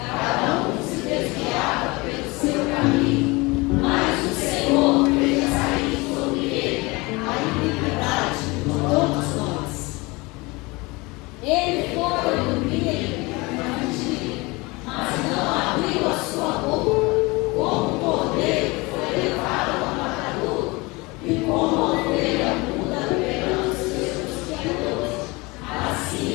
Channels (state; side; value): quieter; right; 24.5 dB